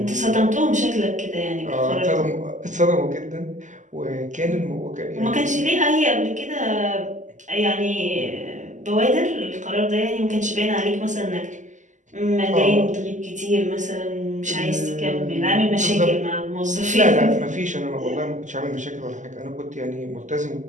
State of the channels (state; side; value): late; left; 0.36 ms